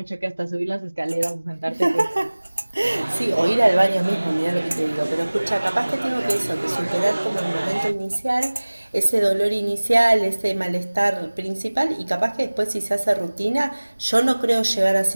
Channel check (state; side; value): inverted; both; correlation -1.00